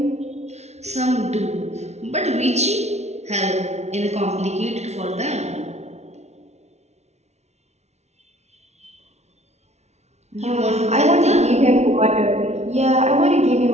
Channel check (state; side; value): late; left; 0.32 ms